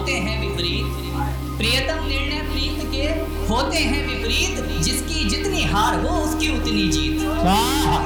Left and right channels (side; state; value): both; identical; correlation 1.00